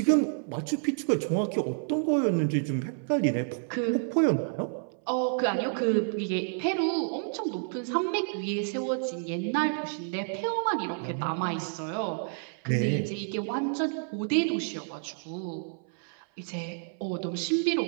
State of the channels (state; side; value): silent; left; 58 dB below the other